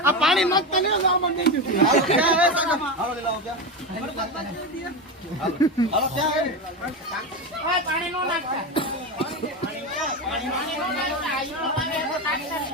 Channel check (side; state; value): both; normal; correlation 0.17